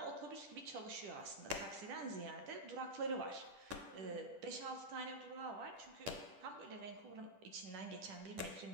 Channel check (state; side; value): late; left; 10 ms